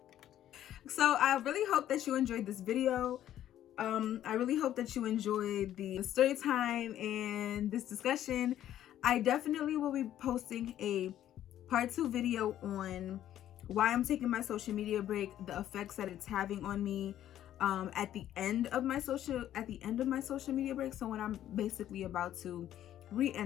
So I really hope that you enjoyed this video. I really hope that you enjoyed the story time and this discussion. I definitely will be posting a part 2 video on why I'm taking my social media break, the effects that it's having on me, at the end of my social media break. So when I'm basically about to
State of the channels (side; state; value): right; quieter; 11.8 dB